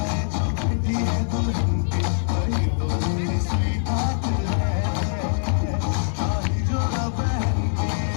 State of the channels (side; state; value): right; silent; digital silence